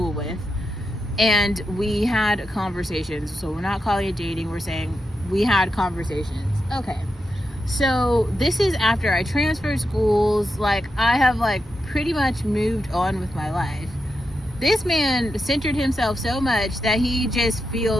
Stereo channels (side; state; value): both; normal; correlation 0.87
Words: with, and we had conversations. So we're not calling it dating, we're saying we had conversations. Okay, so this is after I transferred schools. Like, I have like pretty much moved on with my life. This man centered himself so much that he just